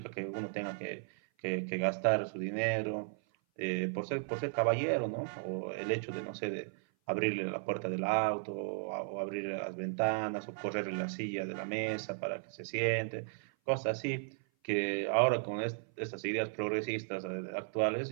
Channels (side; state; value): left; silent; 54 dB below the other